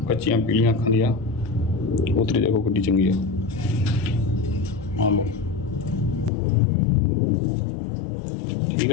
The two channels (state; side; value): drops out; right; at 6.3 s